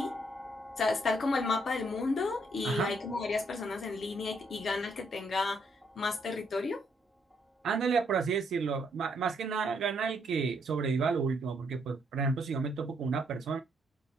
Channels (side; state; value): both; normal; correlation 0.72